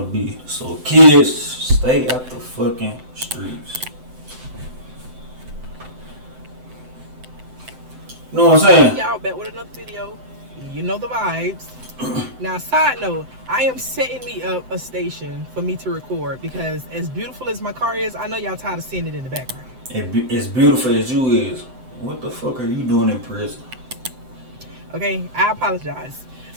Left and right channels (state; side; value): late; left; 7.8 ms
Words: be. So kids, stay out the fucking streets. You know what I'm saying? Y'all back with another video. You know the vibes. Now, side note, I am setting me up a station for me to record because as beautiful as my car is, I know y'all tired of seeing it in the background. As beautiful as you is, what the fuck are you doing in prison? Okay, I apologize.